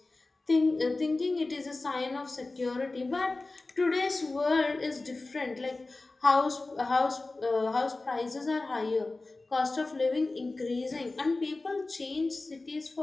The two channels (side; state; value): right; quieter; 3.3 dB